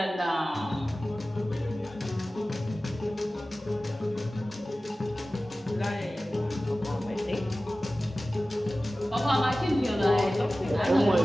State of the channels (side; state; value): both; normal; correlation 0.96